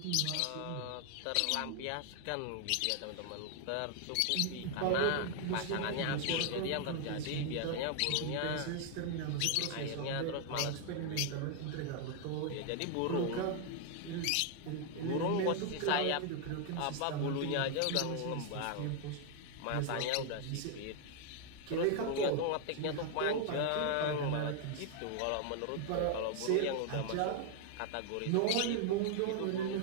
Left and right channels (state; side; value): different; both; correlation 0.00